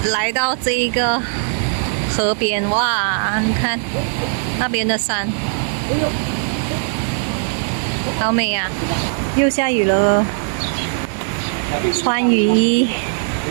来到这一个河边，哇，你看那边的山，好美啊！又下雨了，穿雨衣，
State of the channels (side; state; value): left; silent; 67 dB below the other